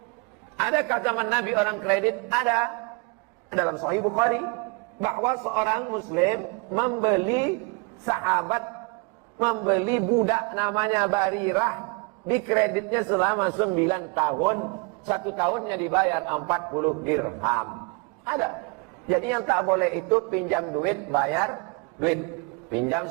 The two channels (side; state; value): left; quieter; 30.6 dB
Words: Adakah zaman Nabi orang kredit? Ada. Dalam Sahih Bukhari. Bahwa seorang muslim membeli budak namanya Barirah. Dikreditnya selama 9 tahun. 1 tahunnya dibayar 40 dirham. Ada. Jadi yang tak boleh itu pinjam duit, bayar duit. Pinjam